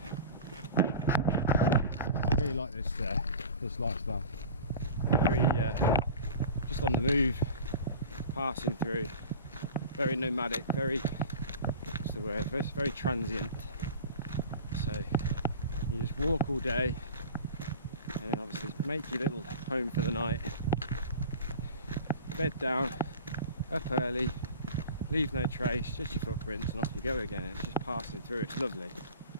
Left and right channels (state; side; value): inverted; both; correlation -0.37